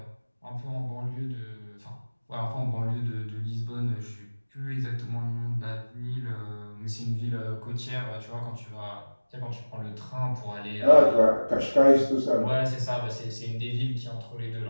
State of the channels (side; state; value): both; inverted; correlation -1.00